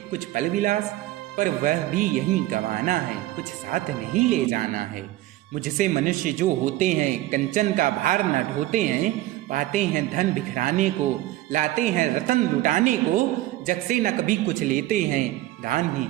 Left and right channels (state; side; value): quieter; left; 16.0 dB